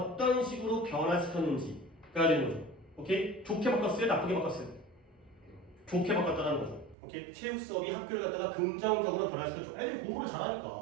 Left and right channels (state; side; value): drops out; left; at 7.0 s